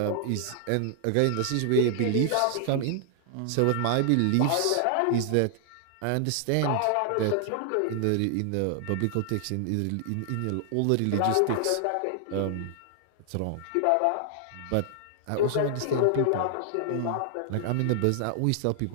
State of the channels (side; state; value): both; different; correlation 0.00